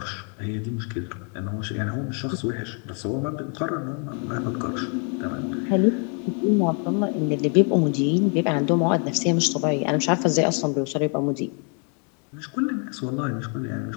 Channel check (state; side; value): quieter; right; 39.4 dB